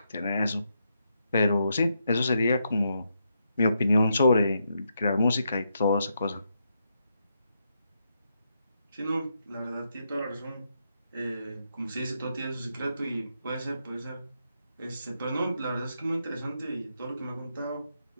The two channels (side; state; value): both; inverted; correlation -0.81